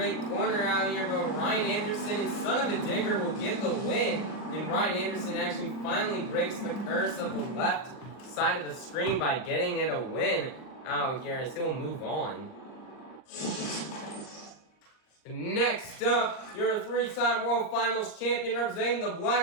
corner out here, but Ryan Anderson and Son of a Digger will get the win. And Ryan Anderson actually finally breaks the curse of the left side of the screen by getting it a win out here, as he'll move on. Next up, your three-time World Finals champion representing the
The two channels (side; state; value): right; late; 39 ms